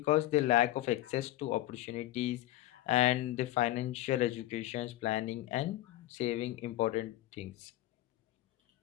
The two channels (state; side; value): quieter; right; 15.5 dB